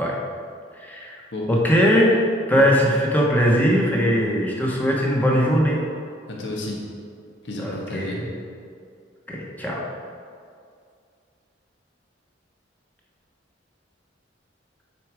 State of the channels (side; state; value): both; normal; correlation 0.62